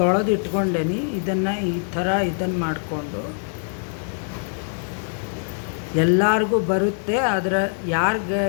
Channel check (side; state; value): right; silent; 63 dB below the other